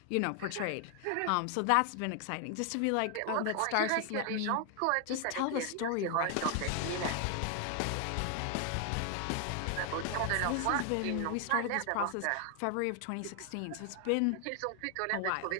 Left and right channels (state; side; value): different; both; correlation 0.00